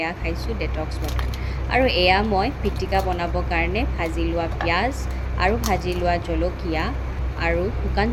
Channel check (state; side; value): identical; both; correlation 1.00